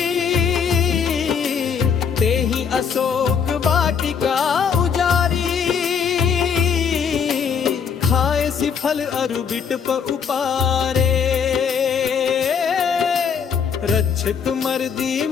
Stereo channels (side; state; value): right; quieter; 6.7 dB